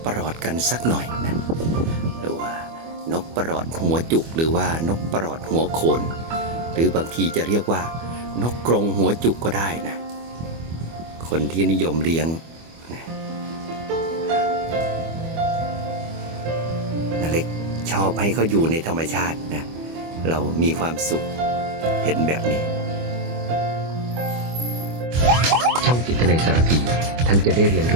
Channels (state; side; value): late; left; 25 ms